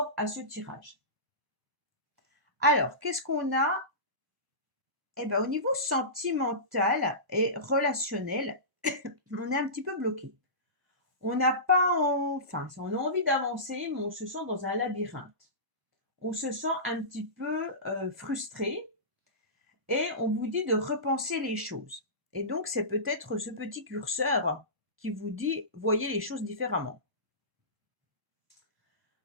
à ce tirage. Alors, qu'est-ce qu'on a? Eh bien, au niveau sentimental et relationnel, on est un petit peu bloqué. On n'a pas, enfin, on a envie d'avancer, mais on se sent dans un labyrinthe. On se sent un petit peu frustré et on vous dit de repenser les choses. Et donc, c'est peut-être ce petit curseur qui vous dit, voyez les choses différemment.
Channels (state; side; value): late; left; 1.0 ms